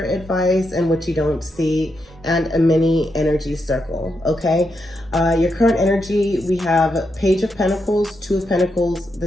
advice, and what you don't see, and a mini energy circle, okay? Your current energy, we have Page of Pentacles, Two of Pentacles,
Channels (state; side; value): normal; both; correlation 0.83